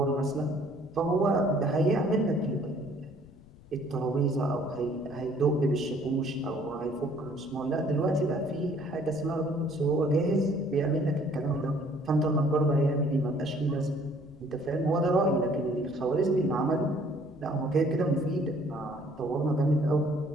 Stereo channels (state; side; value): noise; left; rumble, 23 dB below the sound